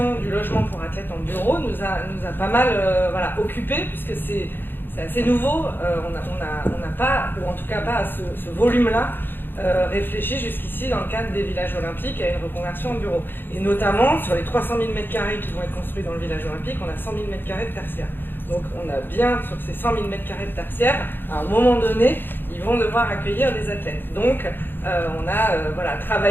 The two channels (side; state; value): right; late; 0.098 ms